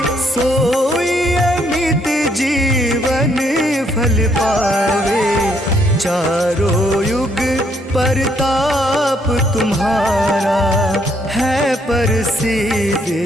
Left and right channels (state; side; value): normal; both; correlation 0.70